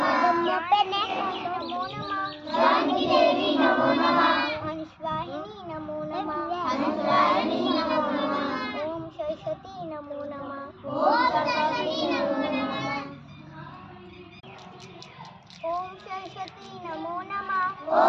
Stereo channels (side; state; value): both; identical; correlation 1.00